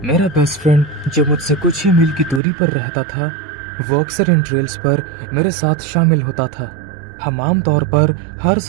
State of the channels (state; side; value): drops out; left; at 2.4 s